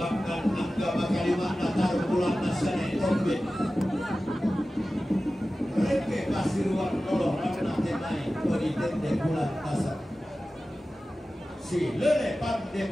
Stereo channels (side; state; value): both; normal; correlation 0.95